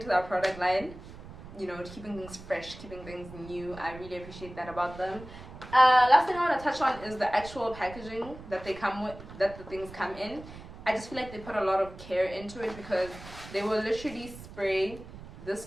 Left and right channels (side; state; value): right; noise; rumble, 15 dB below the sound